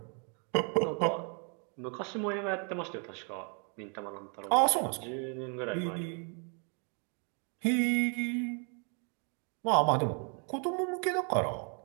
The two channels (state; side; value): quieter; left; 39.9 dB